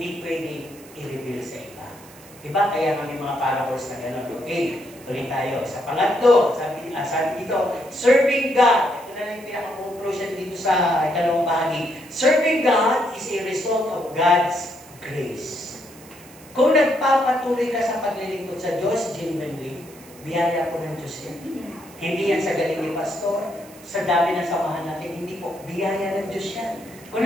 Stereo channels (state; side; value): noise; right; hiss, 22 dB below the sound